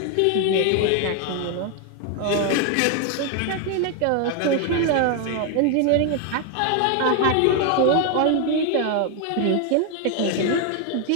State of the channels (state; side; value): different; both; correlation 0.01